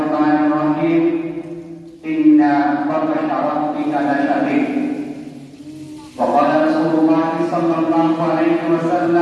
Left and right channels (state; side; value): identical; both; correlation 1.00